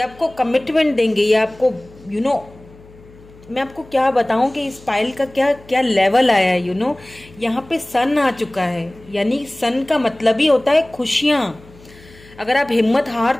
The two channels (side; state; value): left; noise; hum, 24 dB below the sound